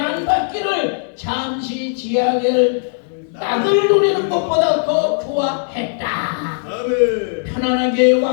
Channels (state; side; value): silent; right; digital silence